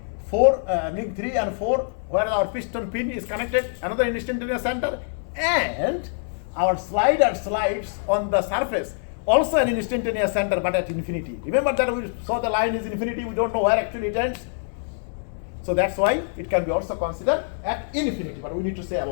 3 and 4, where our piston pin is connected, another instantaneous center, and our slider slides on the surface, also an instantaneous center, but at infinity. Remember that we saw the line is infinity, we don't know where actually it ends. So that's why it can be also considered at infinity, but we need to say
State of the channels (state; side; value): silent; right; 62 dB below the other